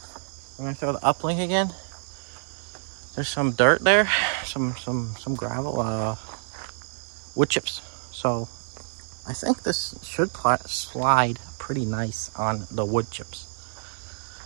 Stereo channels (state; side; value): silent; left; digital silence